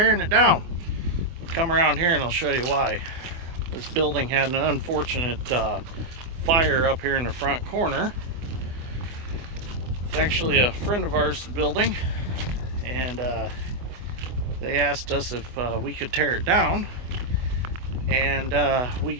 it down? Come around here and I'll show you why. This building had an unfortunate fire up here in the front corner. It's actually a friend of ours building, and they asked us if we could tear it down, and we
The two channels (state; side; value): late; left; 24 ms